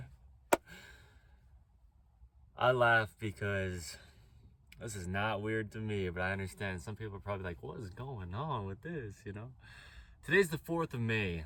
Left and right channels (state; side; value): identical; both; correlation 1.00